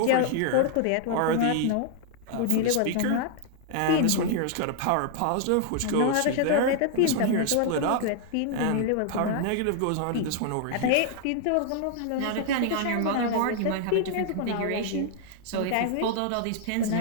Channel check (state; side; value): different; both; correlation 0.00